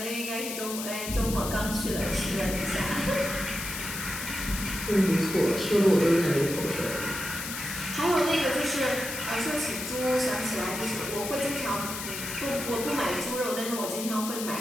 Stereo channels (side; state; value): left; noise; hiss, 6 dB below the sound